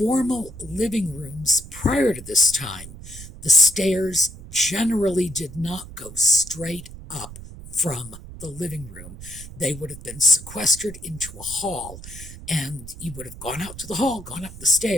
living rooms prior to this time, the stairs generally did not go straight up from the living room. They would have been sequestered into a hall, and you would have gone out to the hall, gone up the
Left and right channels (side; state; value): right; noise; rumble, 14 dB below the sound